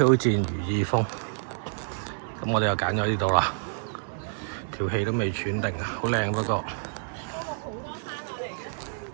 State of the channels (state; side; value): silent; left; digital silence